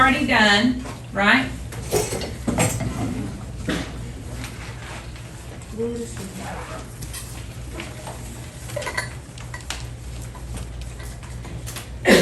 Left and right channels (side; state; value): both; identical; correlation 1.00